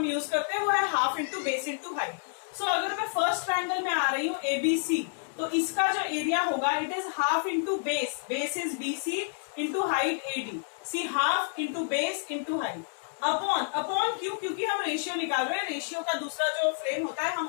यूज करते हैं वो है half into base into height. So अगर मैं फर्स्ट ट्रायंगल में आ रही हूँ ABC, तो इसका जो एरिया होगा it is half into base is BC into height AD. See half into base into height upon क्यों, क्योंकि हम रेशियो निकाल रहे हैं. रेशियो का दूसरा जो फ्रेम होता है हम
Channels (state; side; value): silent; right; digital silence